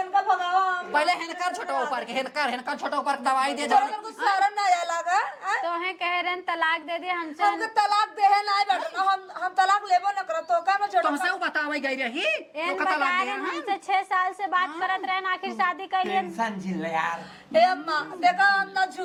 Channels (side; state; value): both; identical; correlation 1.00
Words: का ना भगावा हम पहले हिनकर छोटा ऊपर के हिनकर छोटा ऊपर के दवाई दे तोरा कुछ शर्म ना आया लगा हैं? तो है कह रहे हैं तलाक दे दे हमसे हमके तलाक देहे ना बैठना हम तलाक लेबो न करत तो का में छोड़ तुमसे बतावे गई रही एन तो बता कता रहे हैं हमसे 6 साल से बात करत रहे आखिर शादी कर लिए टेंशन झिल यार ए अम्मा देखा हम ना